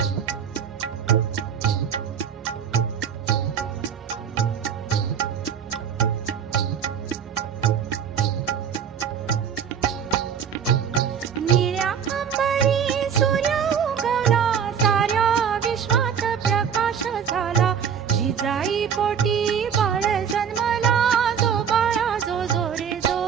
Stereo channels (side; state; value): left; quieter; 7.6 dB